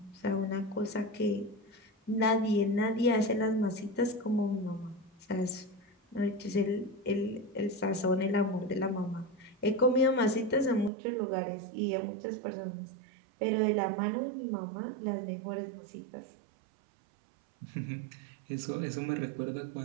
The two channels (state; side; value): drops out; left; at 10.9 s